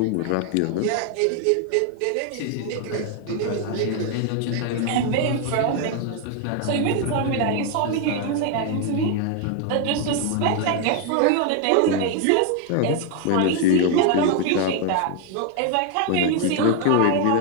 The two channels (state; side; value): different; both; correlation 0.01